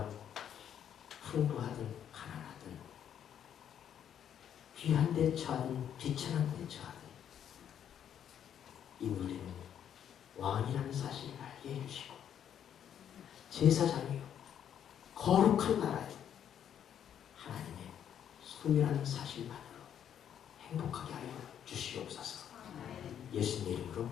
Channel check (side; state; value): right; quieter; 9.4 dB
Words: 풍부하든 가난하든 귀한 데 처하든 비천한 데 처하든 이 우리는 왕이라는 사실을 알게 해주시고 제사장이요 거룩한 나라요 하나님의 소유라는 사실만으로 행복하게 하여 주시옵소서. 예수님 이름으로